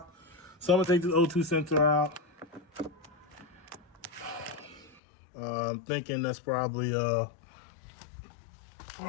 So I'm gonna take this O2 sensor out. I'm thinking that's probably well,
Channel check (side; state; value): right; drops out; at 5.0 s